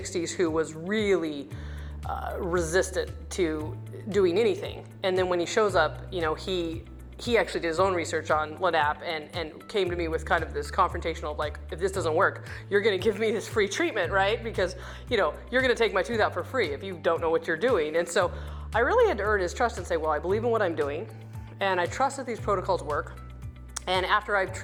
who was really resistant to doing anything. And then when he shows up, you know, he actually did his own research on LANAP and came to me with kind of this confrontational, like, if this doesn't work, you're gonna give me this free treatment, right? Because, you know, you're gonna take my tooth out for free if you don't know what you're doing. And so I really had to earn his trust and say, well, I believe in what I'm doing, and I trust that these protocols work. And after I've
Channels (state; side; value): identical; both; correlation 1.00